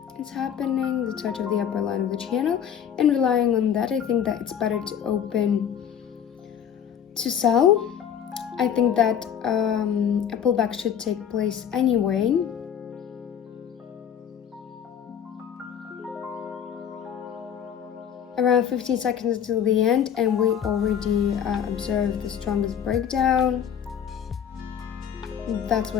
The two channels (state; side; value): quieter; right; 8.6 dB